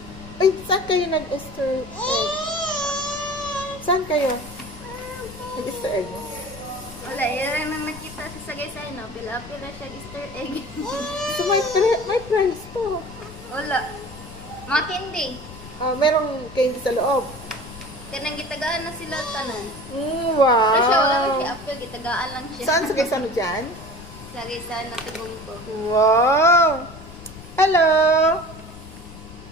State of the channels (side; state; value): left; noise; rumble, 16 dB below the sound